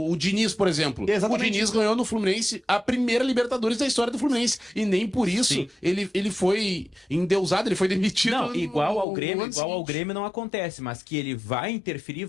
Diniz, por exemplo. Exatamente. O Diniz ganhou no Fluminense a primeira Libertadores da história do Fluminense. E nem por isso ele foi endeusado, ele foi demitido. Não, igual ao Grêmio não acontece, mas que ele vai interferir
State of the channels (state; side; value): drops out; right; at 9.1 s